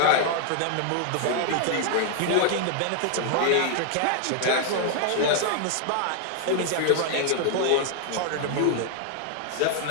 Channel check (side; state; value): both; different; correlation 0.00